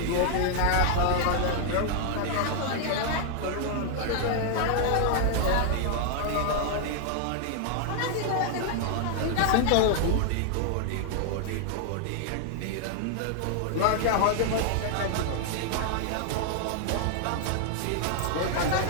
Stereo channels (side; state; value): both; different; correlation 0.00